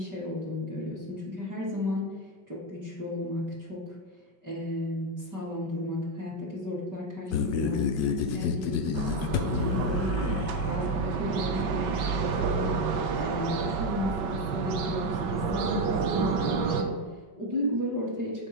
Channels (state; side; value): late; left; 5.3 ms